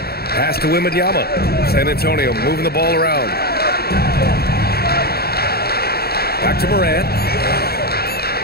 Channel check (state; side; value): late; right; 0.46 ms